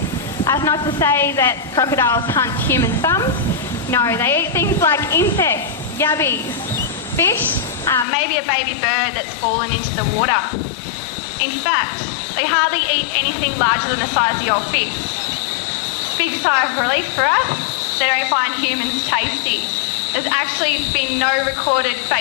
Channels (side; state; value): right; drops out; at 8.1 s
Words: That's not to say that crocodiles hunt human thumbs. No, they eat things like insects, yabbies, fish, maybe a baby bird that's fallen into the water. In fact, they hardly eat anything larger than the size of your fist. Big sigh of relief for us, they don't find humans tasty. There's actually been no recorded